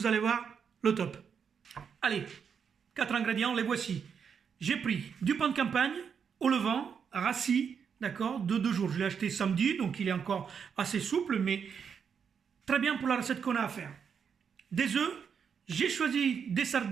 allez voir, le top. Allez, 4 ingrédients, les voici. J'ai pris du pain de campagne au levain, rassis, d'accord, de 2 jours. Je l'ai acheté samedi, donc il est encore assez souple, mais très bien pour la recette qu'on a à faire. Des œufs, j'ai choisi des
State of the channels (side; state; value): left; quieter; 6.9 dB